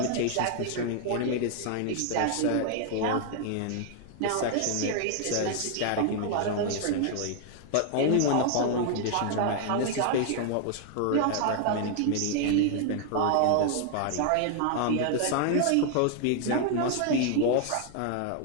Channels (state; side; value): different; both; correlation 0.00